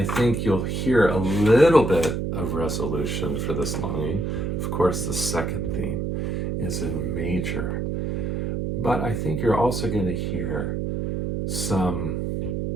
think you'll hear a little bit of resolution for this longing. Of course, the second theme is in major. But I think you're also going to hear some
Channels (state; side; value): noise; right; hum, 1 dB below the sound